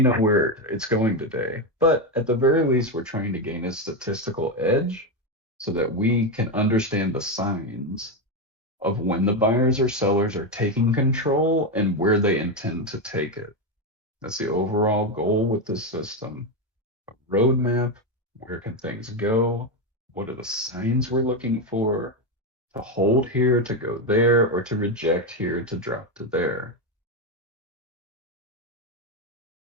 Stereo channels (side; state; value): both; normal; correlation 0.09